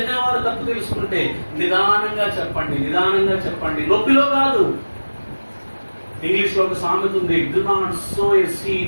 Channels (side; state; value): both; inverted; correlation -1.00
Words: వారు తప్పు తెలుసుకుంటే నిదానంగా చెప్పండి, నిదానంగా చెప్పండి, నొప్పిలో కాదు. ఇంగ్లీష్ లో ఒక సామెత ఉంది, do not sow a